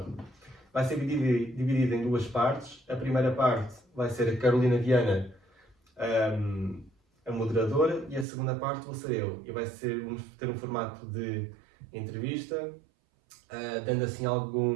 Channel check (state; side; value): drops out; left; at 8.2 s